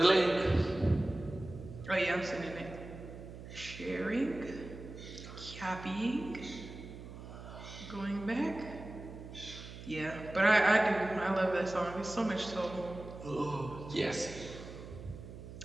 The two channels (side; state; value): right; noise; hum, 13 dB below the sound